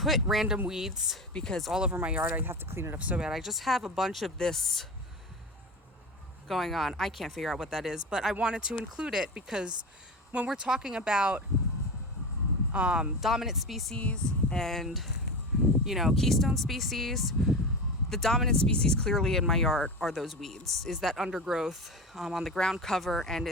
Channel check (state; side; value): normal; both; correlation 0.26